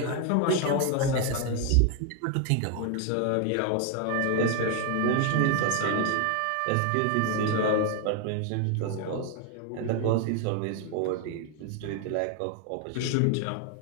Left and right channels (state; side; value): different; both; correlation 0.01